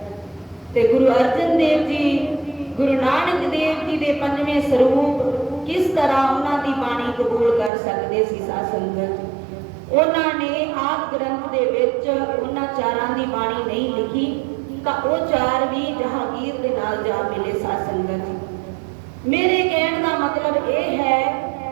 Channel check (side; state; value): left; drops out; at 7.7 s